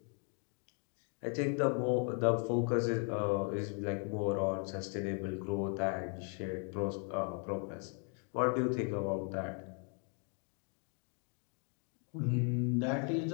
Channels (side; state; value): right; quieter; 39.9 dB